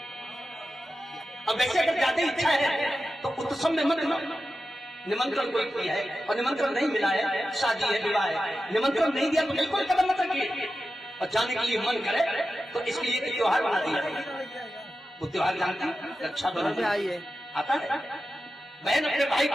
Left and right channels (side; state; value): both; normal; correlation 0.92